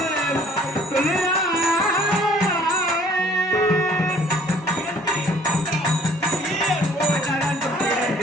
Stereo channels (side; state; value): both; normal; correlation 0.56